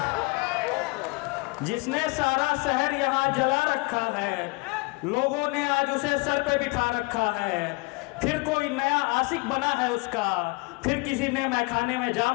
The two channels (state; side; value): quieter; right; 27.0 dB